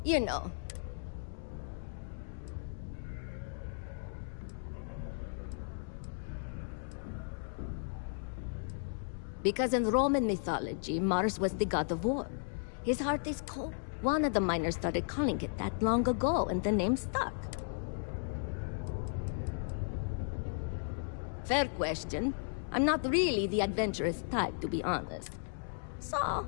You know. Because in Roman mythology, Mars was the god of war. His heart is cold. One of the miners started calling it that long ago, and the name stuck. Fair question. I'm not really the adventurous type, to be honest. So,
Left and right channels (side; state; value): right; silent; digital silence